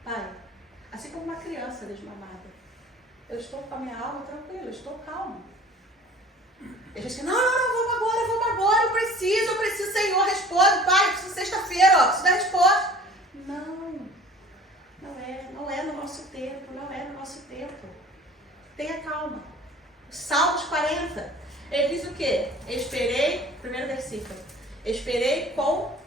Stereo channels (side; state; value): both; normal; correlation 0.46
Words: Pai, assim como uma criança desmamada. Eu estou com a minha alma tranquila, eu estou calmo. Ele diz que não, vamos agora, eu preciso, Senhor, responde, Pai, eu preciso sexta-feira, preciso da resposta. Não é no nosso tempo, não é no nosso tempo. Tenha calma. Salmos 40, ele diz o quê? Esperei, primeiro versículo, esperei com